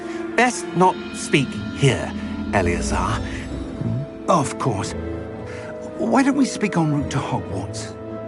Best not speak here, Eleazar. Of course. Why don't we speak en route to Hogwarts?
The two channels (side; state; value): both; identical; correlation 1.00